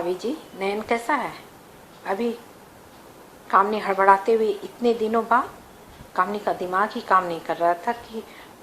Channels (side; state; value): both; identical; correlation 1.00